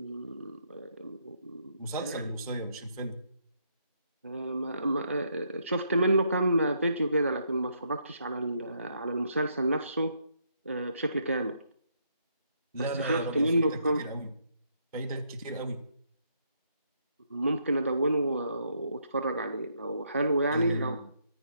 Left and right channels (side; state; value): both; inverted; correlation -0.74